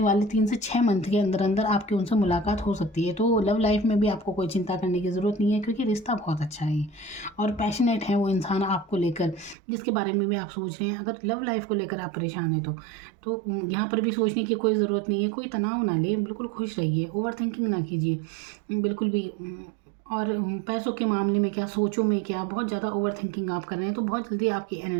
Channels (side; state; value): left; drops out; at 9.6 s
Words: वाले 3 से 6 मंथ के अंदर अंदर आपकी उनसे मुलाकात हो सकती है। तो लव लाइफ में भी आपको कोई चिंता करने की ज़रूरत नहीं है, क्योंकि रिश्ता बहुत अच्छा है और पैशनेट है वो इंसान आपको लेकर, जिसके बारे में भी आप सोच रहे हैं। अगर लव लाइफ को लेकर आप परेशान हैं तो यहाँ पर भी सोचने की कोई ज़रूरत नहीं है। कोई तनाव ना ले, बिल्कुल खुश रहिए, ओवर थिंकिंग ना कीजिए बिल्कुल भी। और पैसों के मामले में क्या, सोचों में क्या, बहुत ज़्यादा ओवर थिंकिंग आप कर रहे हैं तो बहुत जल्दी आपकी